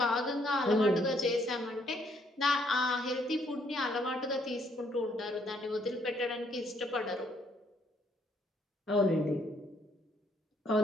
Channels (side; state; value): both; normal; correlation 0.69